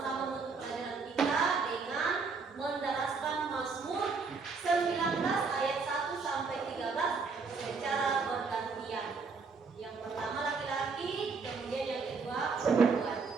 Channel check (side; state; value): left; quieter; 4.7 dB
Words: menutup pelajaran kita dengan mendaraskan Mazmur 19 ayat 1 sampai 13 secara bergantian. Yang pertama laki-laki, kemudian yang kedua perempuan.